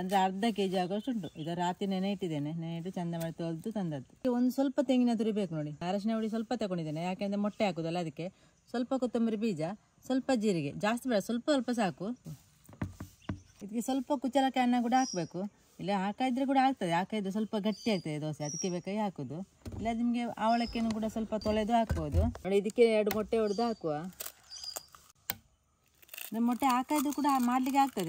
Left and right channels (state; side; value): identical; both; correlation 1.00